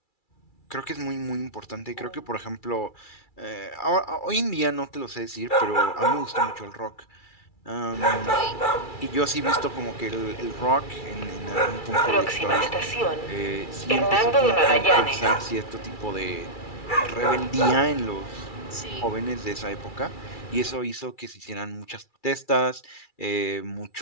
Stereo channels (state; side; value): late; right; 2.3 ms